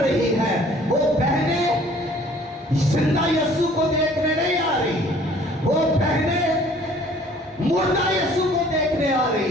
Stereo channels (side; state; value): both; normal; correlation 0.54